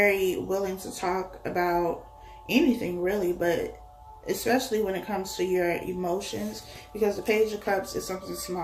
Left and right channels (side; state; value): both; identical; correlation 1.00